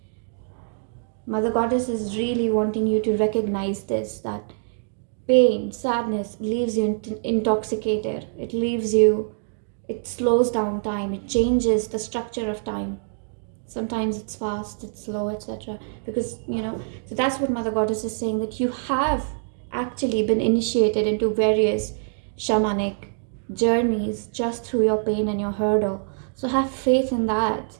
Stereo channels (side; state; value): left; silent; digital silence